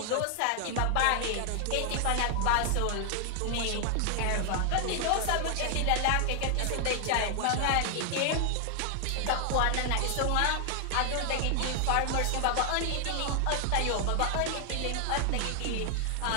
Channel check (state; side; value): different; both; correlation 0.00